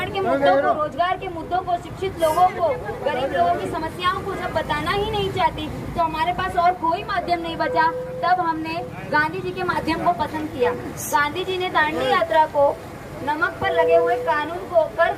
के मुद्दों को, रोजगार के मुद्दों को, शिक्षित लोगों को, गरीब लोगों की समस्याओं को जब बताना ही नहीं चाहती, तो हमारे पास और कोई माध्यम नहीं बचा। तब हमने गांधी जी के माध्यम को पसंद किया। गांधी जी ने दांडी यात्रा को नमक पर लगे हुए कानून को, कर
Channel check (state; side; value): identical; both; correlation 1.00